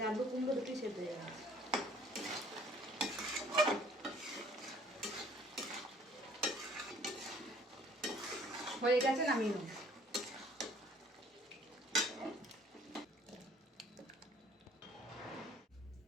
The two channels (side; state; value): both; normal; correlation 0.56